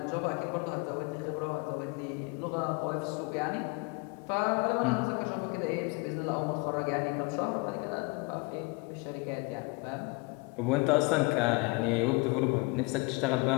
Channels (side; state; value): right; quieter; 29.0 dB